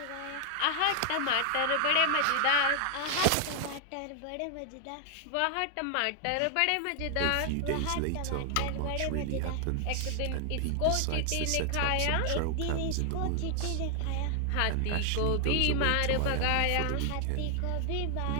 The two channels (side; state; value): both; different; correlation 0.00